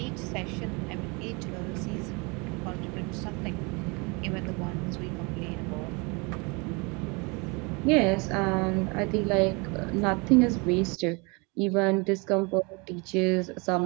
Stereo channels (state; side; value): quieter; left; 29.3 dB